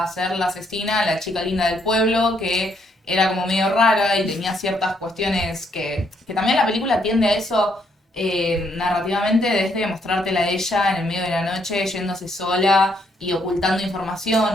a ser la asesina, la chica linda del pueblo, que era como medio rara y tenía ciertas cuestiones que también la película tiende a eso. Narrativamente, desde mostrártela a ella en el medio de la noche yéndose sola y ocultando información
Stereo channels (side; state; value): both; normal; correlation 0.72